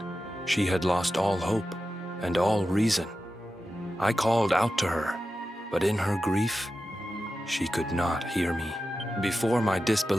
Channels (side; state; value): both; normal; correlation 0.92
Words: she had lost all hope and all reason. I called out to her, but in her grief, she could not hear me. Before my